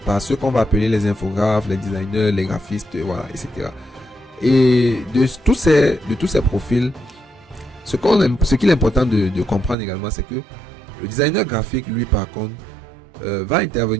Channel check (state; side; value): drops out; left; at 9.8 s